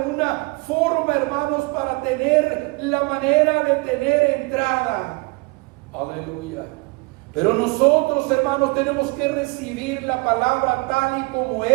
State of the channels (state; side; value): quieter; left; 27.4 dB